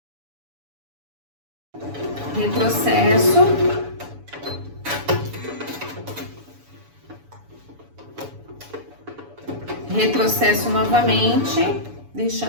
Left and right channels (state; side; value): late; left; 7.0 ms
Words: Retrocesso. Retrocesso novamente,